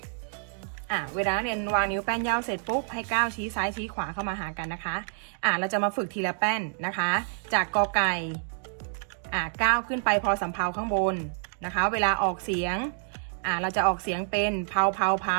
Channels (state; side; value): silent; left; digital silence